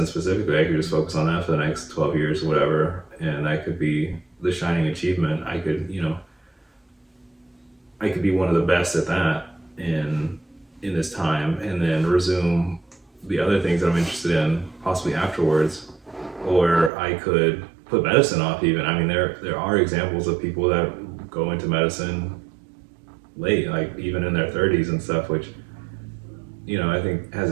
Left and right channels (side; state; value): left; drops out; at 16.9 s